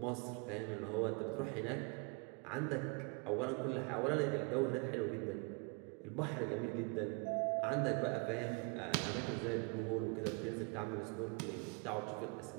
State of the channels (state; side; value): quieter; left; 32.4 dB